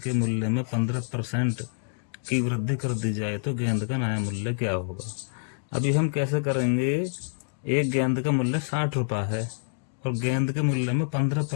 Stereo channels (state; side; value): silent; right; digital silence